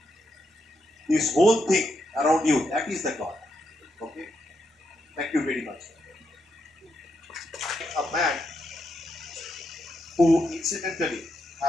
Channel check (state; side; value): normal; both; correlation 0.82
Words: this whole thing around you, that is the God. Okay? Thank you very much. A man who incidentally